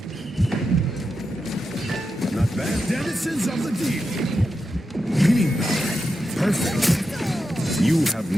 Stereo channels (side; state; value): both; normal; correlation 0.88